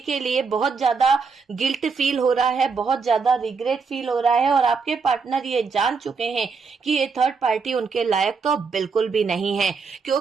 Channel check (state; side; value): quieter; left; 5.1 dB